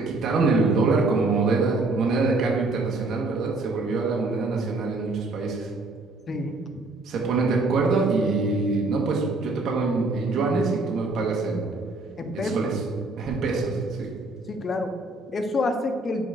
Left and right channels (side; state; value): left; quieter; 3.0 dB